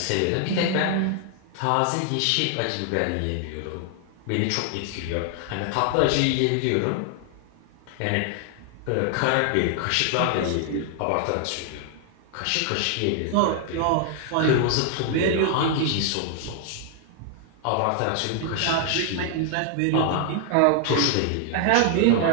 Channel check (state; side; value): different; both; correlation 0.00